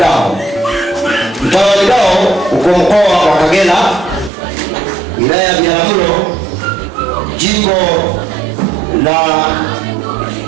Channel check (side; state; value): left; drops out; at 4.3 s